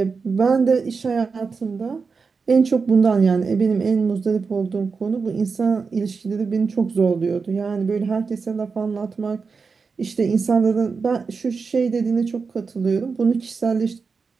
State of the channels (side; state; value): left; quieter; 5.0 dB